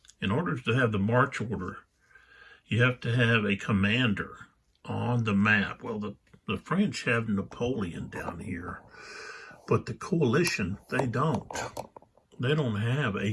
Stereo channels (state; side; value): identical; both; correlation 1.00